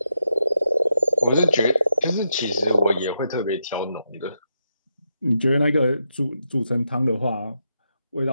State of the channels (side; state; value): both; inverted; correlation -0.84